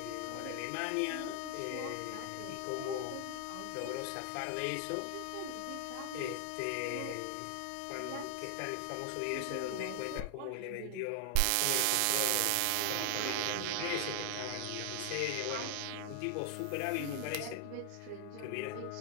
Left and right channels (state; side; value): different; both; correlation 0.00